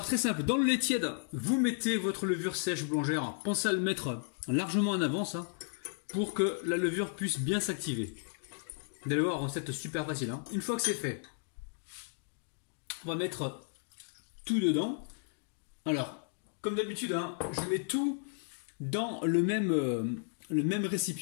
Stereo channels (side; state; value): right; silent; digital silence